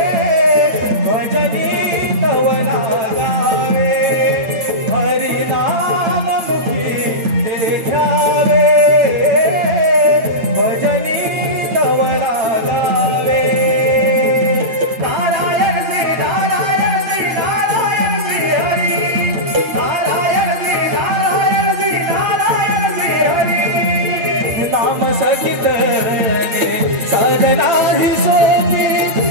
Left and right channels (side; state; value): left; late; 8.9 ms